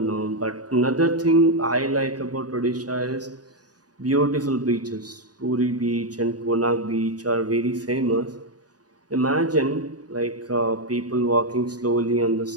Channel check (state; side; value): late; left; 0.68 ms